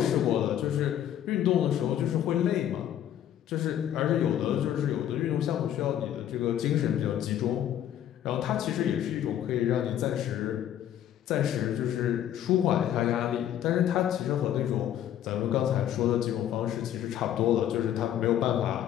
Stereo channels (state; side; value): quieter; right; 10.9 dB